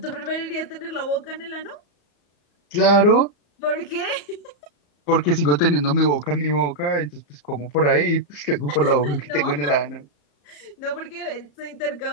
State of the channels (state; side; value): late; right; 35 ms